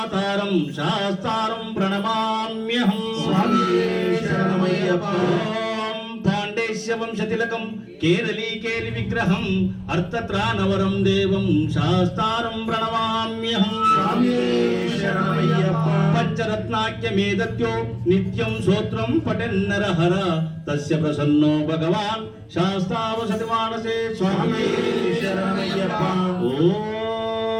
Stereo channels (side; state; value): both; identical; correlation 1.00